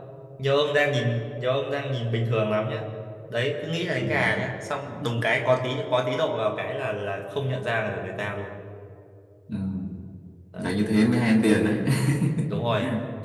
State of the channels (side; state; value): both; identical; correlation 1.00